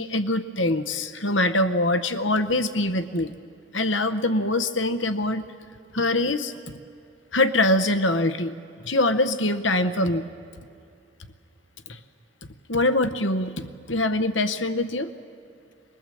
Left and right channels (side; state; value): both; normal; correlation 0.11